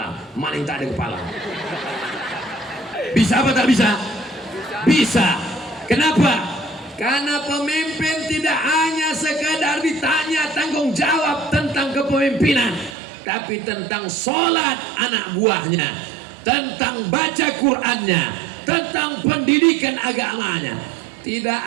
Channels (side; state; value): left; drops out; at 12.9 s